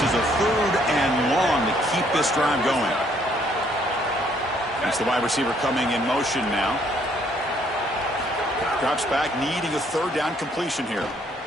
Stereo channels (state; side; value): normal; both; correlation 0.66